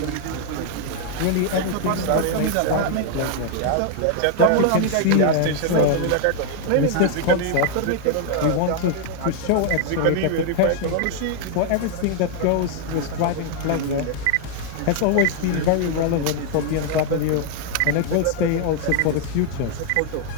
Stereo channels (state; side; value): different; both; correlation 0.00